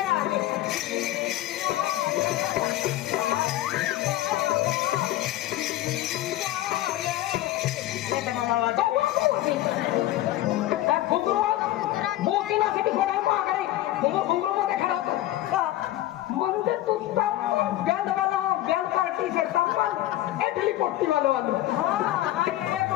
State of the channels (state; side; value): quieter; right; 14.8 dB